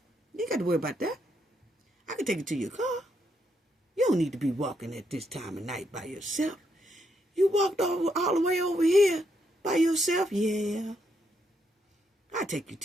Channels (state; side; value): normal; both; correlation 0.77